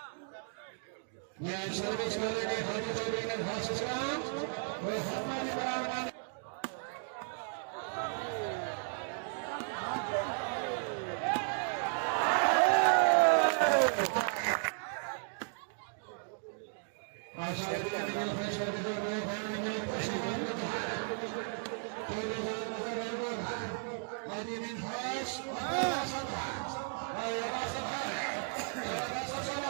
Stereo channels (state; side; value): silent; left; 55 dB below the other